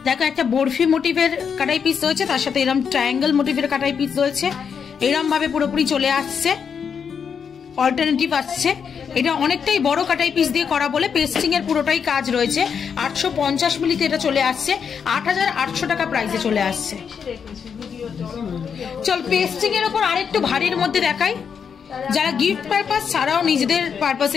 দেখো একটা বরফি মোটিভের কাটাই পিস রয়েছে, তার সাথে এরকম ট্রায়াঙ্গেল মোটিভের কাটাই পিস রয়েছে, এরকম ভাবে পুরোপুরি চলে আসছে, অল্টারনেটিভ আসছে। এটা অনেকটাই বড় কাটাই পিস দিয়ে করা বলে পেস্টিং এর পুরোটাই কাজ রয়েছে। 850 মিলিতে এটা চলে আসছে, 8800 টাকা প্রাইসে চলে আসছে। চল পেস্টিং এর উপর আরেকটু ভারীর মধ্যে দেখাই। যারা গিফট পারপাস ছাড়াও নিজেদের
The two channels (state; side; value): quieter; right; 6.8 dB